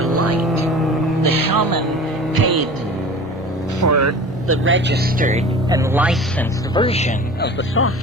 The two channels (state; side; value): normal; both; correlation 0.39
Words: light. The shaman paid for the registered and licensed version of the